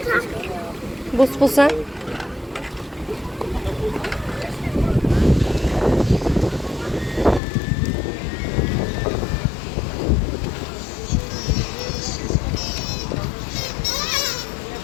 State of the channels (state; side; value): drops out; right; at 7.4 s